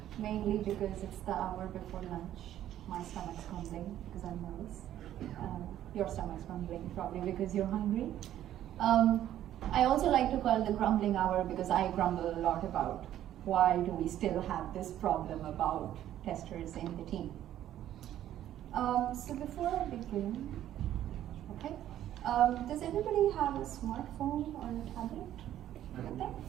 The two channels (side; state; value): left; quieter; 12.0 dB